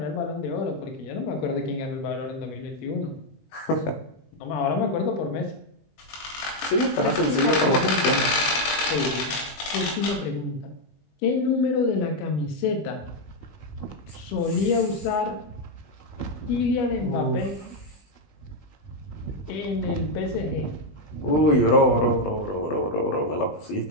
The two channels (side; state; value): right; late; 20 ms